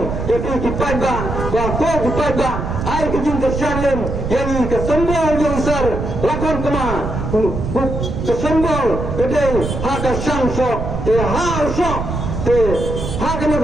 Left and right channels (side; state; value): right; noise; rumble, 4 dB below the sound